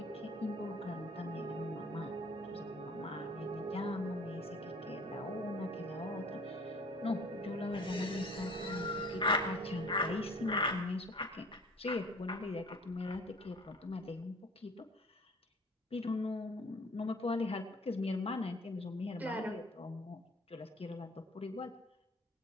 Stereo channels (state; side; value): normal; both; correlation 0.47